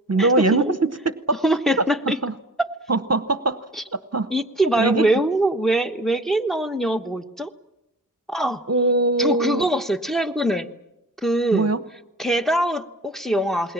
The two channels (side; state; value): both; normal; correlation 0.42